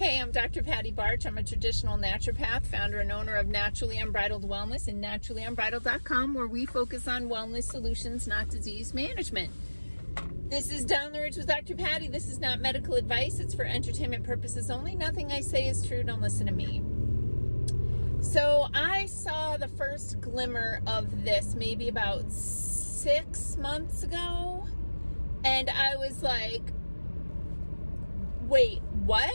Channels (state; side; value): inverted; both; correlation -1.00